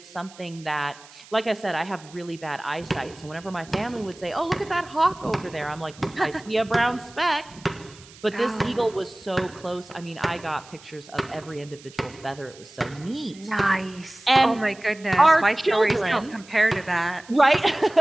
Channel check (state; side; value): noise; right; hiss, 22 dB below the sound